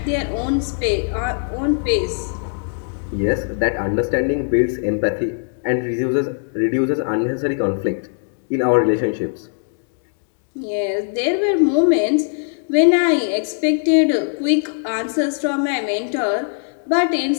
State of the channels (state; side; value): silent; right; digital silence